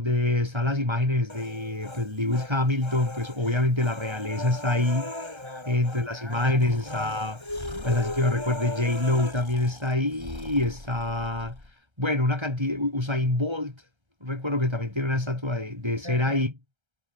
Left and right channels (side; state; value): left; late; 1.3 ms